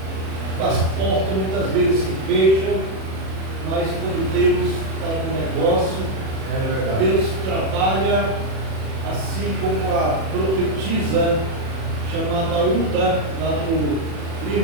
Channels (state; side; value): late; left; 37 ms